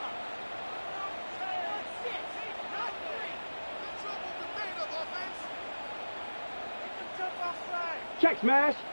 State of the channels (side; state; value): both; inverted; correlation -1.00